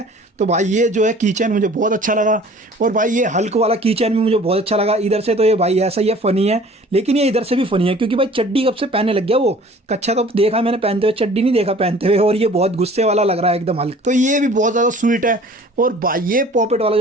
तो भाई ये जो है की चैन मुझे बहुत अच्छा लगा। और भाई ये हल्क वाला की चैन भी मुझे बहुत अच्छा लगा। इधर से तो ये भाई ऐसा ही है, फ़नी है, लेकिन ये इधर से भी फ़नी है, क्योंकि भाई चड्डी कब से पहनने लग गया वो। कच्छा तो देखा मैंने पहनते हुए, चड्डी नहीं देखा पहनते हुए, और ये बहुत गुस्से वाला लग रहा है एकदम हल्क। तो ये भी बहुत ज़्यादा स्वीट है। और भाई ये पॉपेट वाला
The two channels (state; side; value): normal; both; correlation 0.49